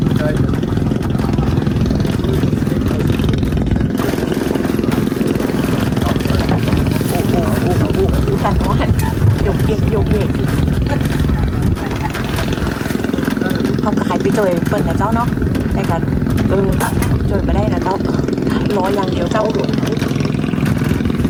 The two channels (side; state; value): both; identical; correlation 1.00